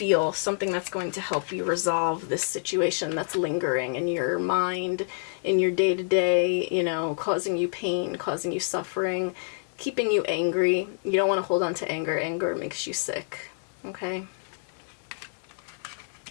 something that's going to help you resolve this situation that's lingering in your mind, in your day-to-day, you know, causing you pain, causing you suffering, keeping you angry. You don't want to hold on to anger. Anger makes you sick, okay?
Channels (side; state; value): right; silent; digital silence